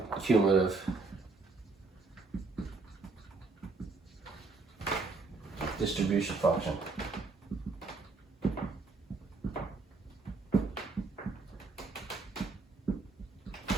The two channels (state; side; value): quieter; left; 3.9 dB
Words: cumulative distribution function.